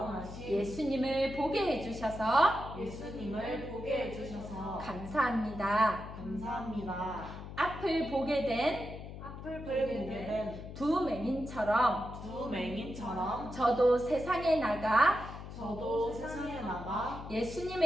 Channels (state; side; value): noise; left; hum, 11 dB below the sound